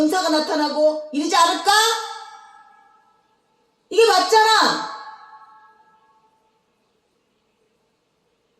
나타나고 이러지 않을까? 이게 맞잖아.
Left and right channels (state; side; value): identical; both; correlation 1.00